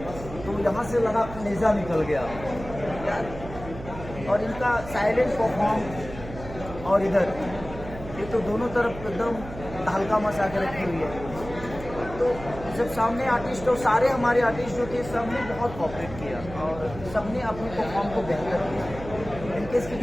तो यहाँ से लगा कलेजा निकल गया यार। और इनका साइलेंट परफॉर्म और इधर ये तो दोनों तरफ एकदम हल्का मचा के रखी हुई है। तो जब सामने आर्टिस्ट और सारे हमारे आर्टिस्ट जो थे सबने बहुत कॉपरेट किया और सबने अपने परफॉर्म को बेहतर किया। इनके इसकी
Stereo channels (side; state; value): right; noise; hum, 12 dB below the sound